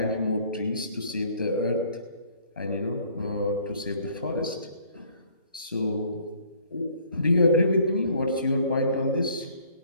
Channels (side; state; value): both; inverted; correlation -0.59